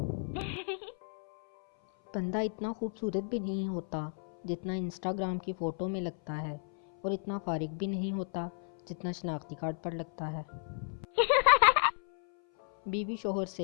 بندہ اتنا خوبصورت بھی نہیں ہوتا جتنا انسٹاگرام کی فوٹو میں لگتا ہے، اور اتنا فارغ بھی نہیں ہوتا جتنا شناختی کارڈ پر لگتا ہے۔ بیوی شوہر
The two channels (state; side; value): silent; right; 55 dB below the other